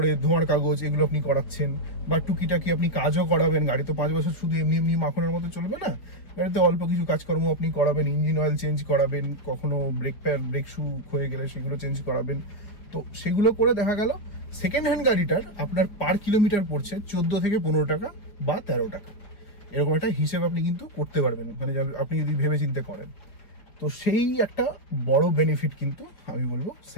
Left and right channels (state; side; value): late; right; 4.7 ms